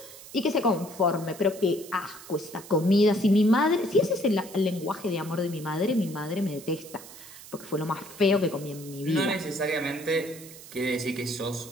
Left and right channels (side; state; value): right; noise; hiss, 17 dB below the sound